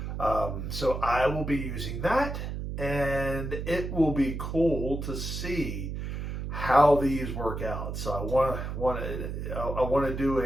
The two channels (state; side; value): noise; right; hum, 5 dB below the sound